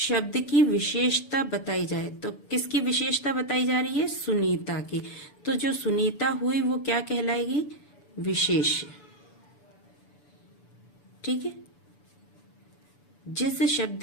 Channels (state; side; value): late; right; 6.9 ms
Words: की विशेषता बताई जाए। तो किसकी विशेषता बताई जा रही है? सुनीता की। तो जो सुनीता हुई वो क्या कहलाएगी? विशेष्य। ठीक है, जिस